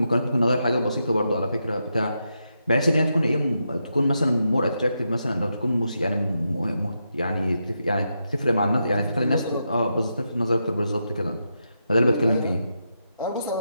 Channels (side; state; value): both; inverted; correlation -0.85